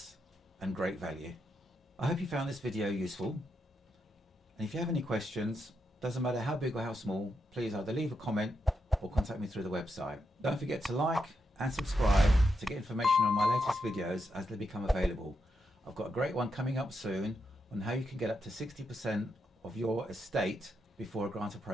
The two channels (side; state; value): both; normal; correlation 0.83